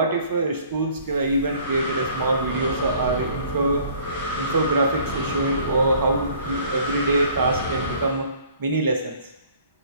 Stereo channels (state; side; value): inverted; both; correlation -0.55